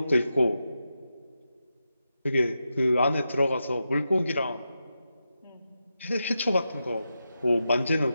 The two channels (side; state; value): both; inverted; correlation -0.88